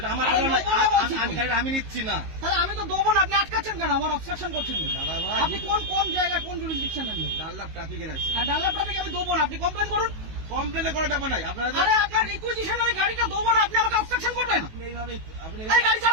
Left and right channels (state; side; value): late; left; 19 ms